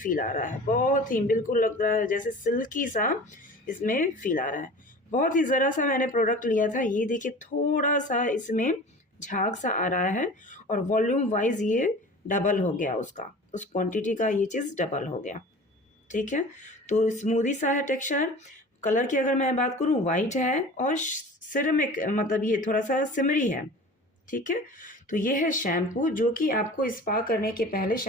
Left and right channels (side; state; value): both; normal; correlation 0.39